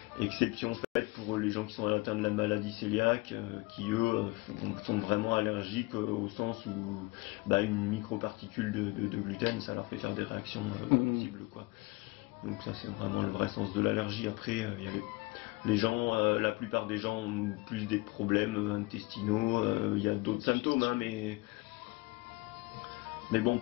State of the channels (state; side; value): quieter; right; 23.8 dB